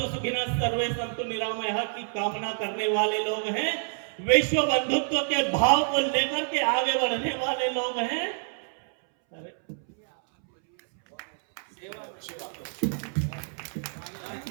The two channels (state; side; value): silent; left; 60 dB below the other